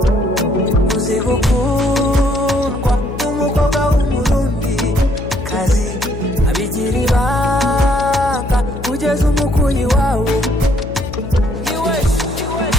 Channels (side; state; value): left; noise; hum, 9 dB below the sound